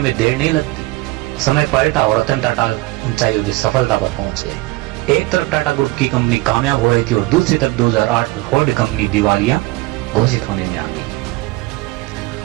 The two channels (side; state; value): left; quieter; 20.6 dB